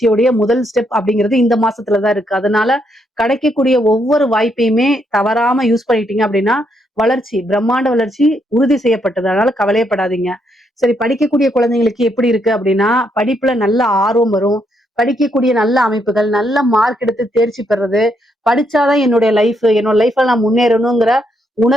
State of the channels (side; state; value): both; normal; correlation 0.76